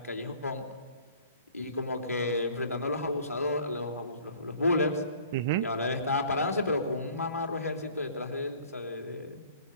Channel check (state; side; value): inverted; both; correlation -0.51